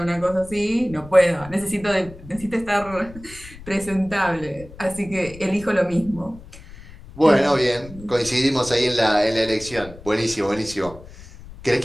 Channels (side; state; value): left; noise; rumble, 17 dB below the sound